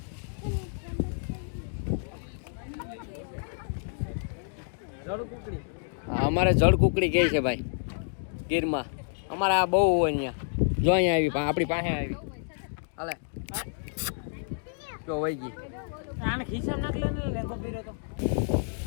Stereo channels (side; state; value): right; silent; digital silence